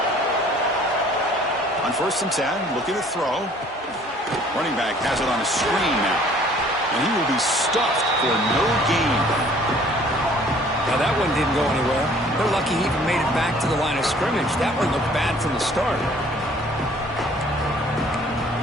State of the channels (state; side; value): normal; both; correlation 0.55